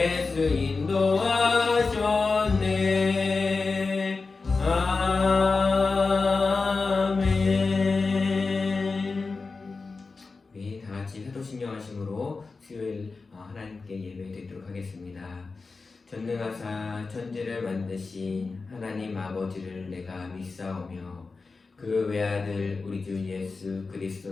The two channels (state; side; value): quieter; right; 4.1 dB